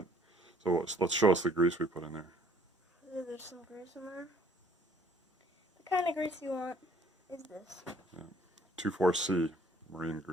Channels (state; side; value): normal; both; correlation 0.59